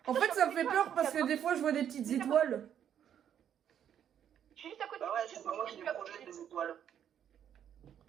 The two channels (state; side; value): quieter; left; 9.4 dB